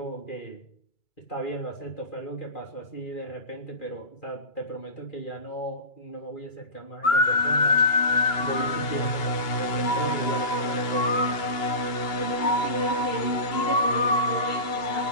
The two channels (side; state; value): right; late; 2.3 ms